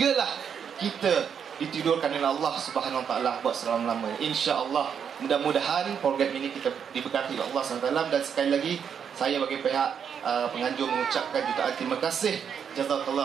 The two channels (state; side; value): quieter; left; 7.5 dB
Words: kita ditidurkan oleh Allah Subhanahu Wa Taala buat selama-lamanya. Insya-Allah, mudah-mudahan program ini kita diberkati oleh Allah Subhanahu Wa Taala. Dan sekali lagi, saya bagi pihak penganjur mengucapkan jutaan terima kasih.